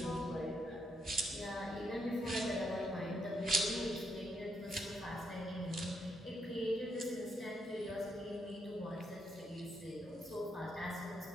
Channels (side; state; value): both; normal; correlation 0.78